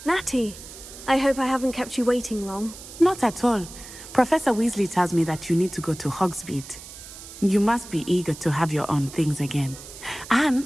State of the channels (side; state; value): right; noise; hiss, 15 dB below the sound